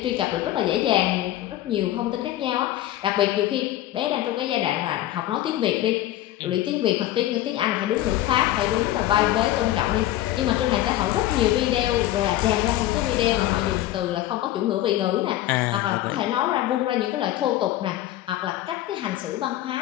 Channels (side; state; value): right; quieter; 14.2 dB